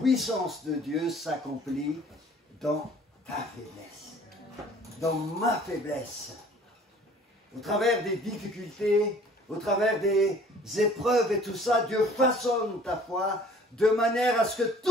de Dieu s'accomplit dans ta faiblesse, dans ma faiblesse, au travers des difficultés, au travers des épreuves et tout ça. Dieu façonne ta foi de manière à ce que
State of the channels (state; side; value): normal; both; correlation 0.53